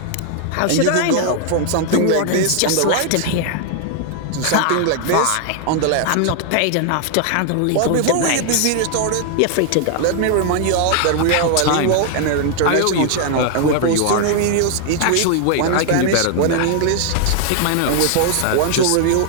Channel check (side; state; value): both; different; correlation 0.00